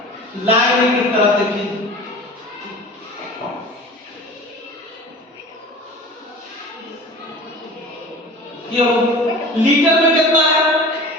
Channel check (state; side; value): normal; both; correlation 0.38